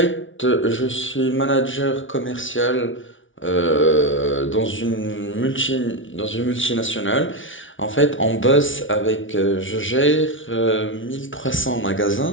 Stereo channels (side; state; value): right; late; 0.56 ms